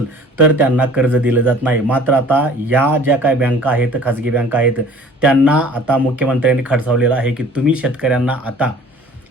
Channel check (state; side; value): normal; both; correlation 0.48